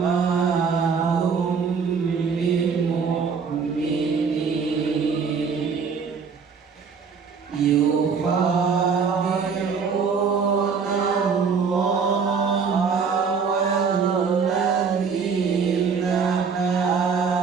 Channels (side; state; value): left; quieter; 5.7 dB